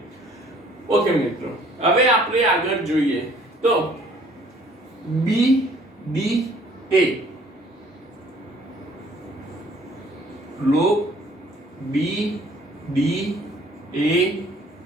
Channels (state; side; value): normal; both; correlation 0.57